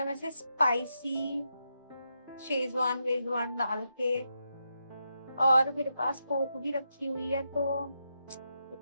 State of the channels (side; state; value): both; inverted; correlation -0.84